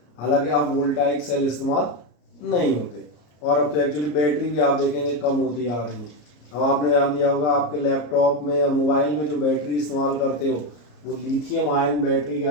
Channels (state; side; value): late; right; 33 ms